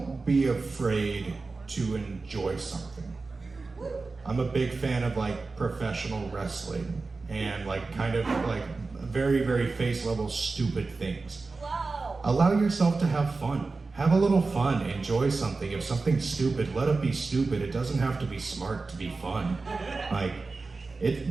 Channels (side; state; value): left; quieter; 3.9 dB